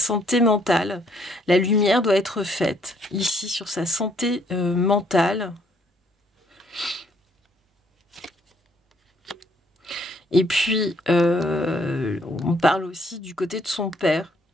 mentale. La lumière doit être faite ici sur sa santé mentale. Et puis, on parle aussi du côté de son père.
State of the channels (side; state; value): both; normal; correlation 0.67